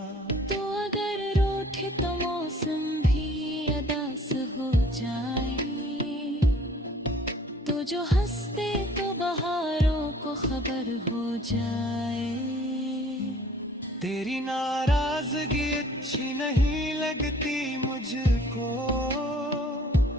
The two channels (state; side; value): normal; both; correlation 0.54